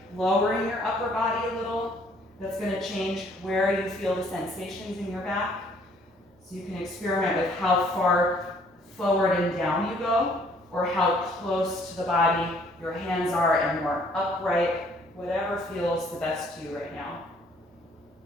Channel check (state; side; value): normal; both; correlation 0.61